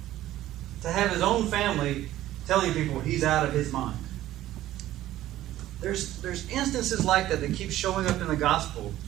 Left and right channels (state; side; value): quieter; left; 14.2 dB